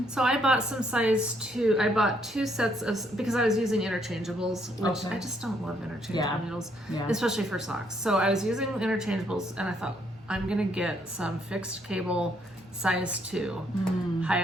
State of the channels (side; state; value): both; normal; correlation 0.71